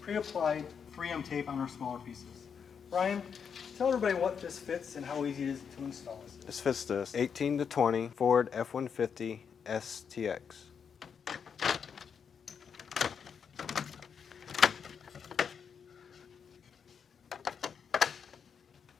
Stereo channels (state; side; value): quieter; right; 6.9 dB